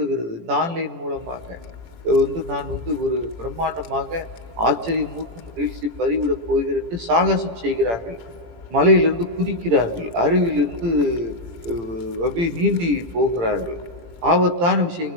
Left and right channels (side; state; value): left; late; 18 ms